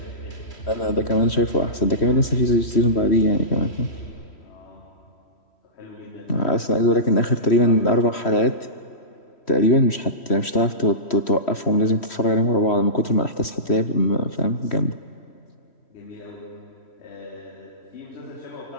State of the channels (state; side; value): late; right; 3.1 ms